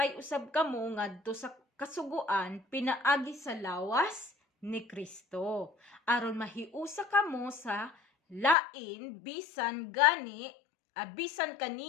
usab kamo ngadto sa kasuguan pinaagi sa lawas ni Kristo, aron mahiusa kamo sa lain bisan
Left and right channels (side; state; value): right; drops out; at 8.6 s